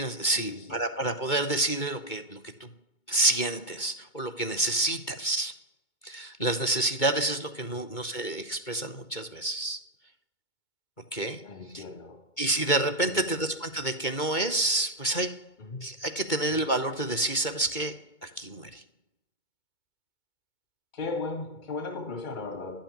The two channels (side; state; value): right; late; 2.2 ms